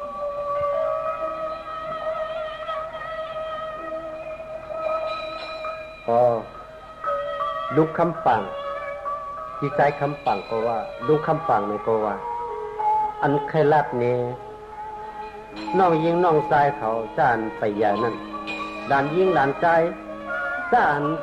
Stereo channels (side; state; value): both; identical; correlation 1.00